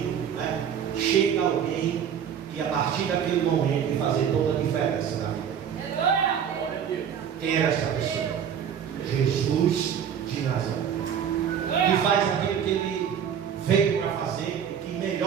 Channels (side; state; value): left; quieter; 8.3 dB